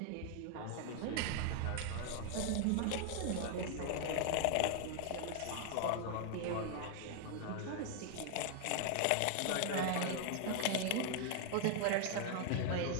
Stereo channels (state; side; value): different; both; correlation 0.00